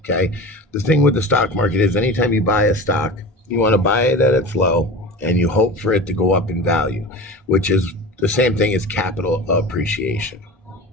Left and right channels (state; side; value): normal; both; correlation 0.31